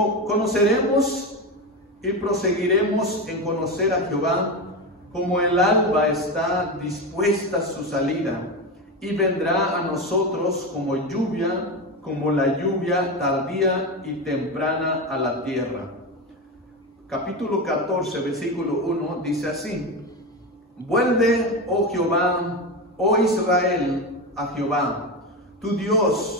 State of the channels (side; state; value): both; normal; correlation 0.18